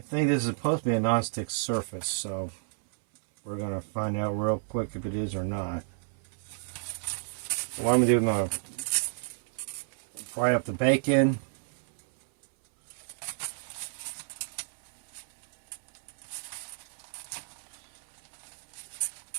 think this is supposed to be a non-stick surface, so we're going to find out real quick if it is or not. What I'm going to do, I'm going to fry up the bacon.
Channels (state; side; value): silent; left; 57 dB below the other